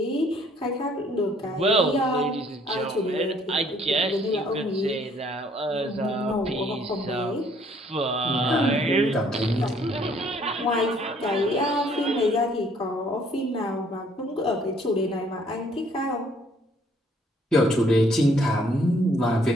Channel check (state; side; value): normal; both; correlation 0.63